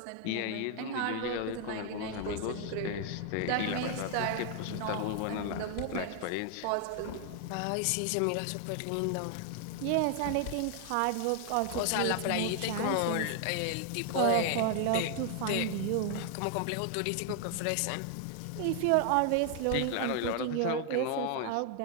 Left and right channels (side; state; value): both; different; correlation 0.00